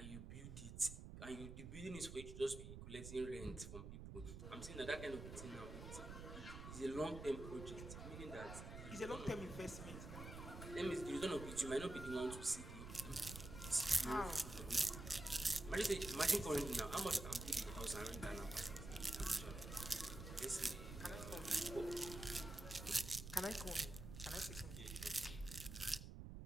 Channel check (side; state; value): right; noise; rumble, 9 dB below the sound